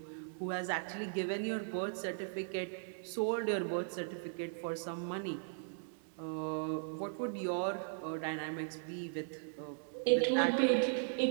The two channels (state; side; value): silent; left; digital silence